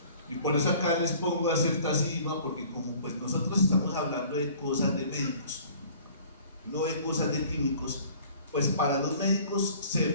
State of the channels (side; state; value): both; inverted; correlation -0.50